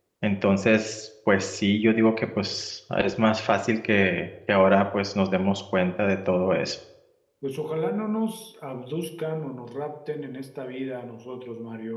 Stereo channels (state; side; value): identical; both; correlation 1.00